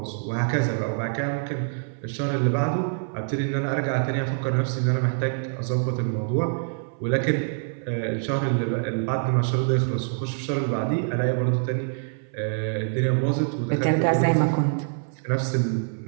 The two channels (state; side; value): silent; left; 57 dB below the other